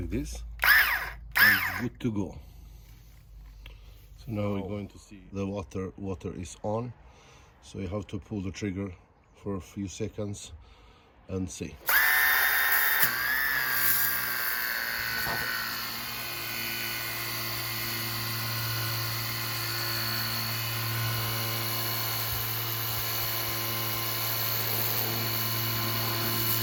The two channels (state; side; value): identical; both; correlation 1.00